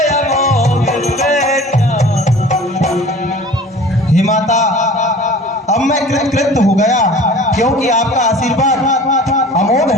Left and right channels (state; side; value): normal; both; correlation 0.43